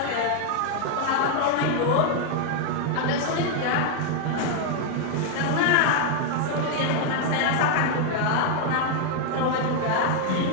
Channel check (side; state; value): both; different; correlation 0.00